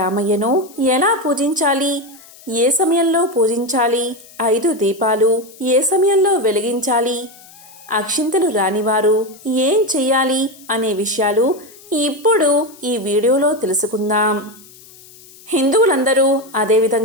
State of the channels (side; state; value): left; noise; hiss, 22 dB below the sound